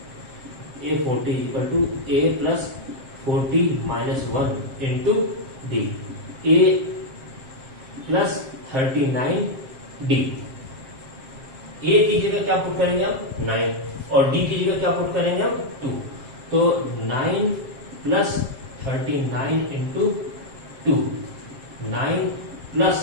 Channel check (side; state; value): left; late; 7.6 ms